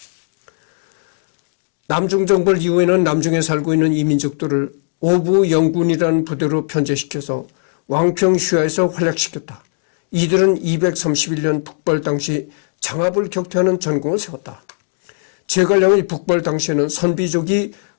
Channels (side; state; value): right; silent; 67 dB below the other